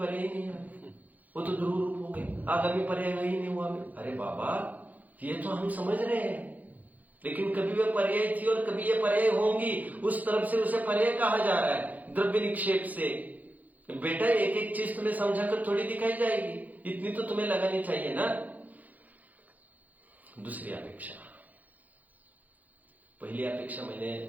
ही नहीं है, वो तो ध्रुव रूप हो गए, आगामी पर्याय ही नहीं हुआ। अरे बाबा, ये तो हम समझ रहे हैं, लेकिन कभी वे पर्याय थी और कभी ये पर्याय होंगी, उस तरफ से उसे पर्याय कहा जा रहा है, द्रव्य निक्षेप से। बेटा एक एक चीज तुम्हें समझा कर थोड़ी दिखाई जाएगी, इतनी तो तुम्हें लगानी चाहिए ना। दूसरी अपेक्षा, पहली अपेक्षा मैंने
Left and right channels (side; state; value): left; late; 0.080 ms